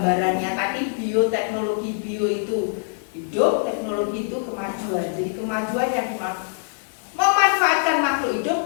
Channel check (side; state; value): right; silent; digital silence